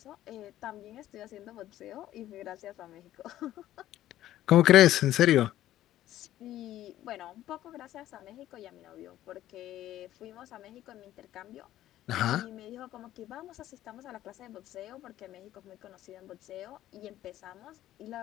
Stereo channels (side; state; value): right; quieter; 13.5 dB